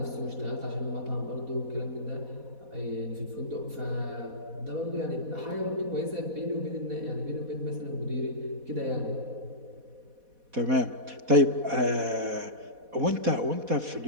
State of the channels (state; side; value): late; left; 4.1 ms